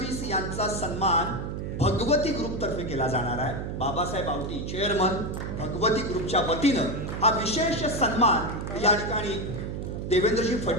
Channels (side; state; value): right; noise; hum, 5 dB below the sound